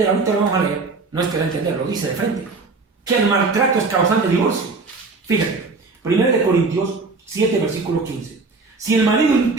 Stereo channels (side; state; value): left; quieter; 4.0 dB